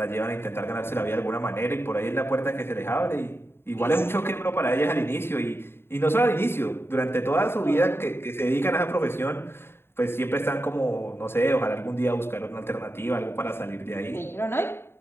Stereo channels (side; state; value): right; late; 0.11 ms